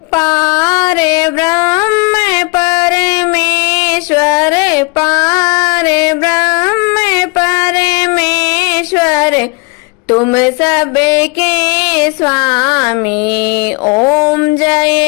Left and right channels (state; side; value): quieter; right; 29.9 dB